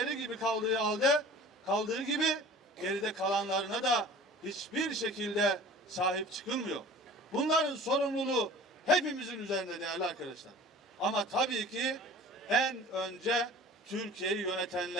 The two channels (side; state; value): both; normal; correlation 0.43